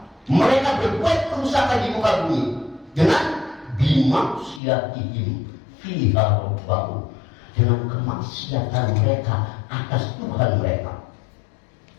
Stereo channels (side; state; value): right; drops out; at 4.6 s